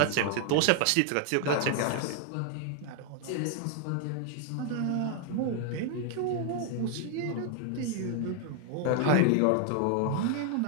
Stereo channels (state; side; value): different; both; correlation 0.00